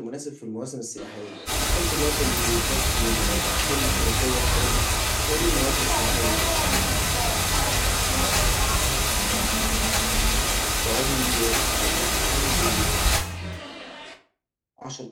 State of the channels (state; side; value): identical; both; correlation 1.00